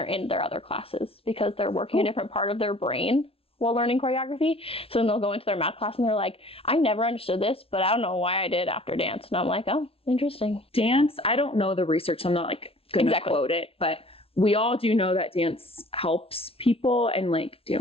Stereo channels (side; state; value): right; late; 0.27 ms